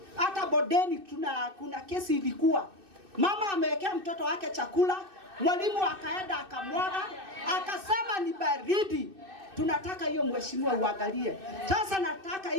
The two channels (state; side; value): late; left; 2.6 ms